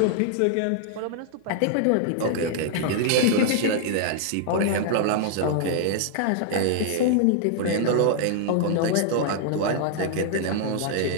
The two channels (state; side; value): different; both; correlation -0.01